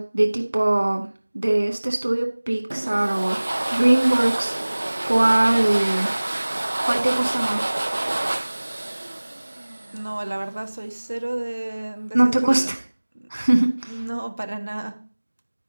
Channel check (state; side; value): inverted; both; correlation -1.00